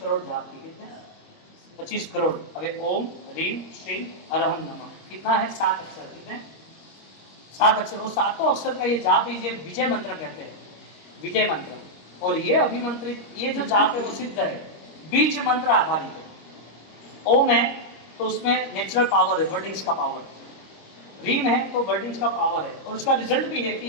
करोड़ जाप की। कितने? 25 करोड़। अबे ओम ह्रीम श्रीम हरहम नमः कितना है? 7 अक्षर। कितने? 7 अक्षर। और सातों अक्षर का ये जाप ही विजय मंत्र कहते हैं, विजय मंत्र। और ये अभिमंत्रित ये जो जाप है वो सिद्ध है, बीज मंत्र आधारित है। ओम है तो उसमें नेचुरल पावर है, वर्डिंग्स का पावर। रीम है तो वर्डिंग्स का पावर है, और उसका रिजल्ट भी है कि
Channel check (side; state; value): right; late; 25 ms